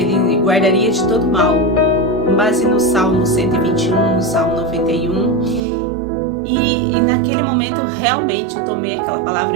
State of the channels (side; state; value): left; drops out; at 5.6 s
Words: guardaria de todo mal, com base no Salmo 121, no Salmo 91. E naquele momento realmente eu tomei aquela palavra,